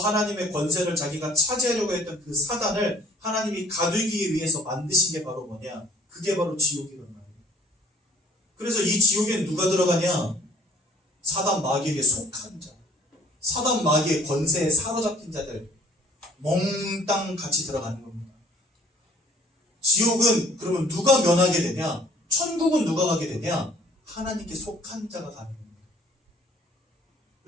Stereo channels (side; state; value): both; normal; correlation 0.54